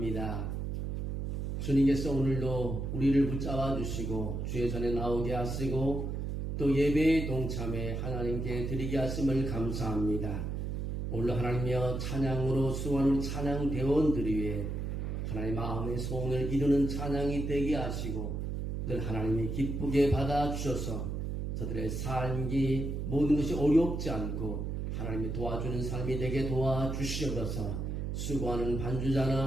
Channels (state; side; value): noise; right; hum, 3 dB below the sound